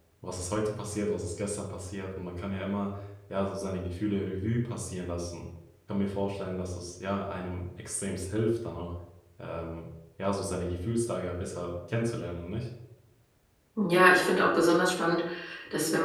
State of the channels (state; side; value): identical; both; correlation 1.00